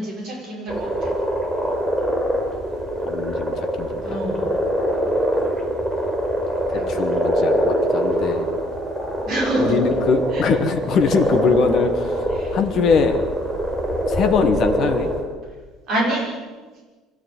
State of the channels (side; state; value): both; normal; correlation 0.67